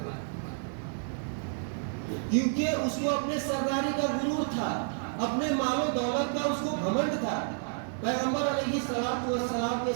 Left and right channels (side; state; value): left; silent; digital silence